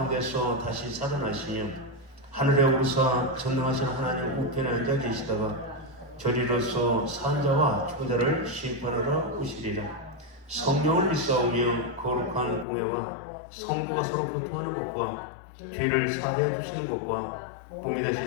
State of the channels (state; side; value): drops out; right; at 12.7 s